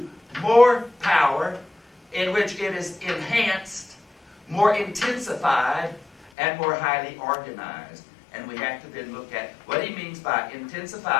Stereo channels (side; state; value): right; drops out; at 6.3 s